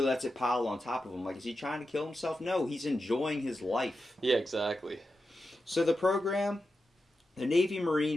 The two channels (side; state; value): both; normal; correlation 0.90